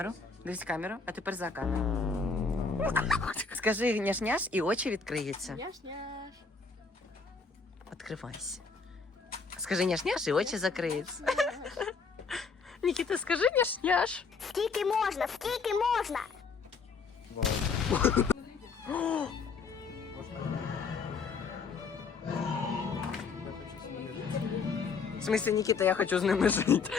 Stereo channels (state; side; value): quieter; right; 4.9 dB